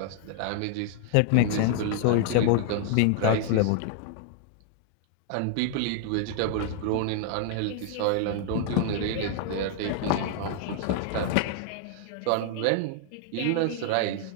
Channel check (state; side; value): different; both; correlation 0.00